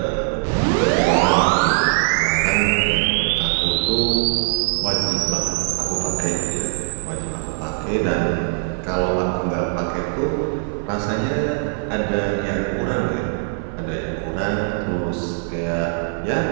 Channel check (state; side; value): silent; left; 59 dB below the other